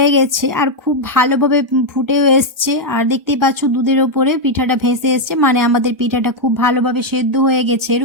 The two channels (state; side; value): late; left; 1.3 ms